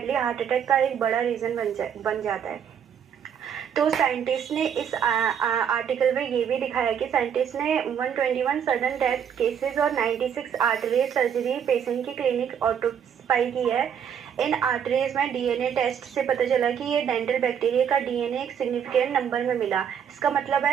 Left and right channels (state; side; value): quieter; left; 8.2 dB